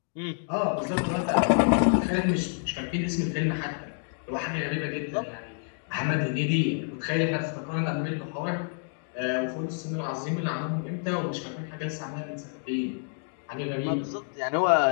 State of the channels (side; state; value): right; silent; 55 dB below the other